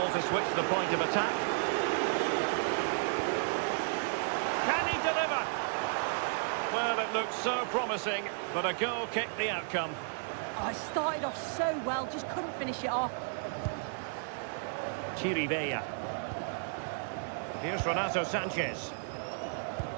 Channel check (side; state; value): left; silent; digital silence